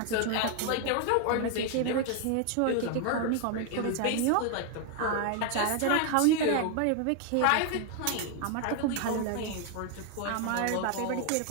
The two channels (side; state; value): both; different; correlation 0.00